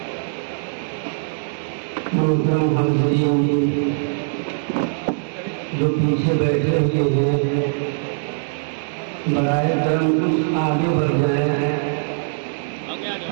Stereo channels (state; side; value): silent; left; digital silence